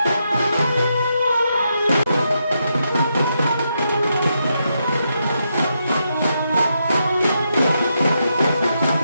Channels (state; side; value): inverted; both; correlation -0.82